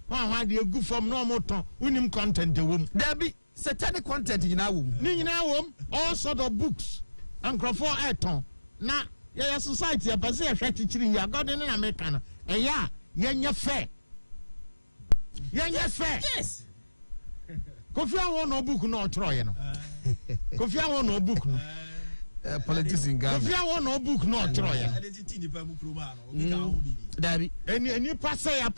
dia good from normal ton unim content the wom there be satanic content nyina wom all sort of books encrofo eton na your society a person a hwet chiri ya god in America no eya yenye fair yes Kofi awon no book no otro ye no Kofi awon no book no politics in Ghana Kofi awon no book no otro ye identity ni pa mu kroma no obi ka ho bibi dabi any pastor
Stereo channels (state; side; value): inverted; both; correlation -1.00